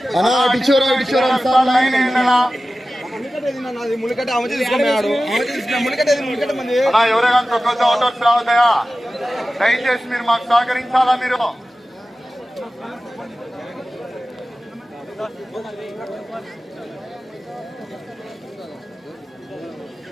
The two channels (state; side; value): normal; both; correlation 0.95